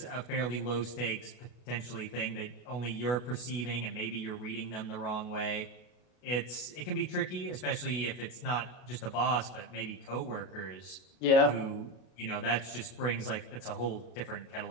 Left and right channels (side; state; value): right; late; 32 ms